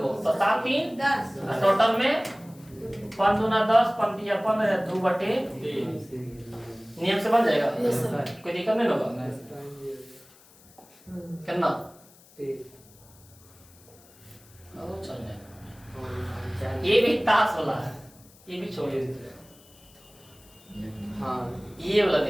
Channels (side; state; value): left; noise; hiss, 26 dB below the sound